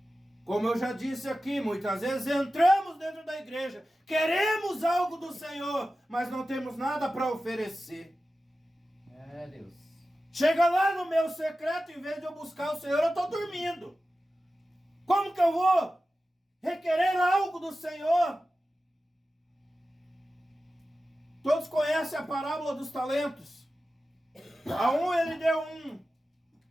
Como eu já disse aqui, muitas vezes entramos dentro da igreja, queremos algo do Senhor, mas não temos nada para oferecer. Deus. Chega lá no meu secreto, em vez de eu buscar o Senhor, eu estou dormindo. Como que eu vou requerer algo do Senhor? Todos conhecem a parábola dos talentos. A um ele deu 1,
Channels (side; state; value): both; normal; correlation 0.94